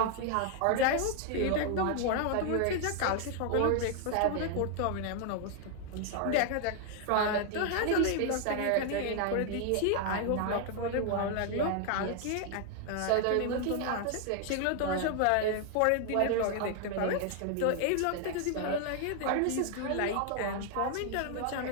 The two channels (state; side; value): different; both; correlation 0.00